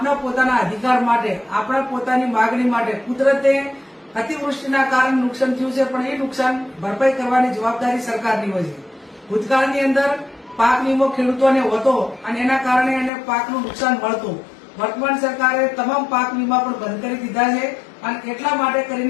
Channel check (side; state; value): right; drops out; at 13.1 s